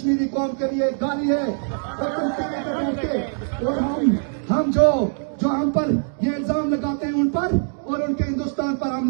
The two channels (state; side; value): silent; left; digital silence